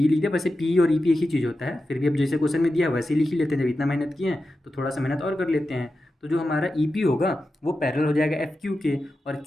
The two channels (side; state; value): both; normal; correlation 0.91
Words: लिख दिया। वैसे पी और ई पी एक ही चीज़ होता है, फिर भी अब जैसे क्वेश्चन में दिया वैसे ही लिख ही लेते हैं। जब इतना मेहनत किए हैं तो थोड़ा सा मेहनत और कर लेते हैं। तो जो हमारा ई पी होगा वो पैरेलल हो जाएगा एफ क्यू के, और